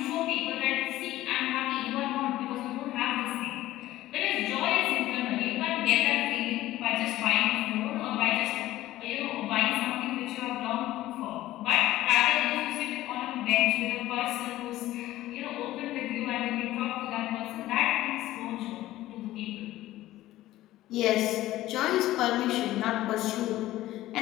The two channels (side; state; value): right; quieter; 15.5 dB